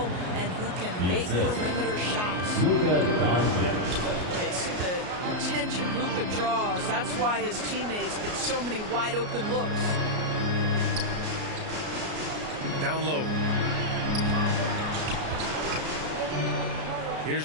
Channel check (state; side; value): late; left; 33 ms